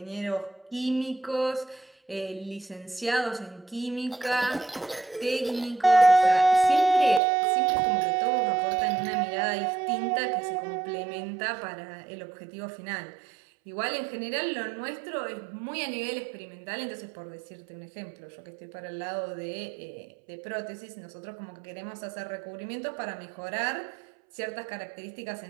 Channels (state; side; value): drops out; left; at 7.2 s